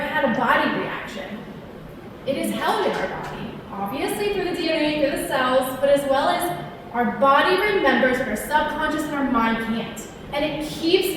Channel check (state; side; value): identical; both; correlation 1.00